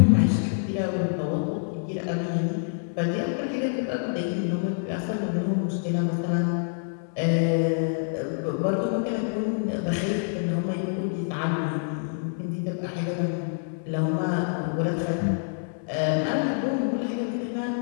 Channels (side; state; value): right; silent; 60 dB below the other